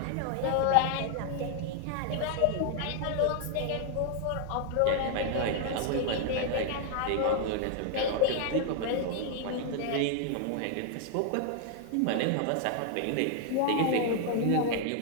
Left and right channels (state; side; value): different; both; correlation 0.00